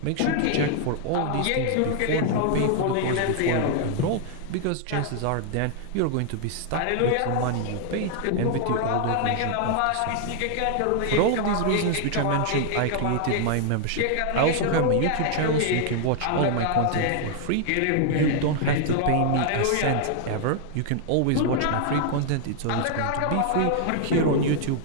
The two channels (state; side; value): different; both; correlation 0.00